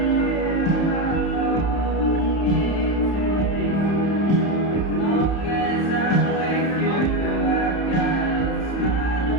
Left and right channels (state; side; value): late; right; 31 ms